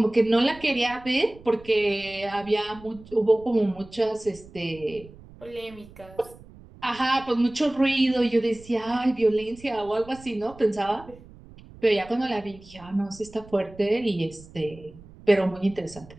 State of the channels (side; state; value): right; noise; rumble, 20 dB below the sound